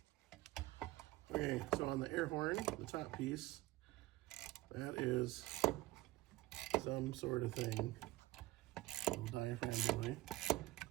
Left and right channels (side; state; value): left; quieter; 18.3 dB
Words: Okay, so on the air horn, the top piece, that is some sort of thing. Little diaphragm boy